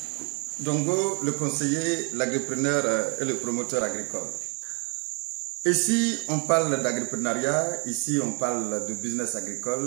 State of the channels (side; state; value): left; quieter; 31.7 dB